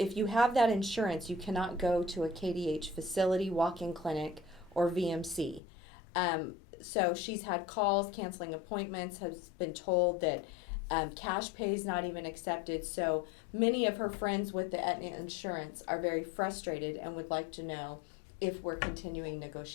you have that insurance, you cannot go to a KDH facility, walk-in clinic, or VMC. So she's had calls, canceling appointments, has been told that cash pay is not even accepted. So many of her friends with the Aetna Insurance are very frustrated and would like to know if we're continuing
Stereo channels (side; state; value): right; drops out; at 5.6 s